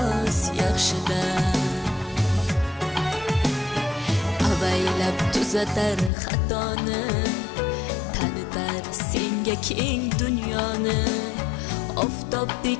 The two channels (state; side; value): drops out; right; at 6.1 s